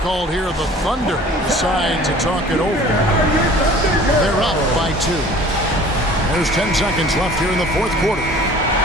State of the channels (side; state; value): both; normal; correlation 0.47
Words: here. The Thunder decide to talk it over. They're up by 2. There's 10 seconds left here in the fourth quarter.